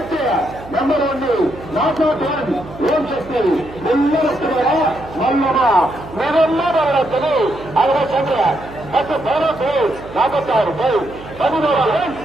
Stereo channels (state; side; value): noise; right; hum, 16 dB below the sound